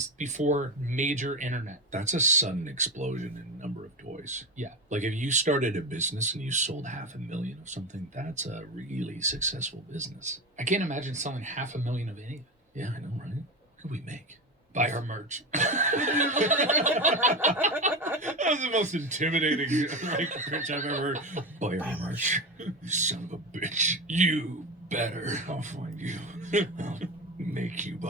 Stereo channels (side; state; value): both; normal; correlation 0.20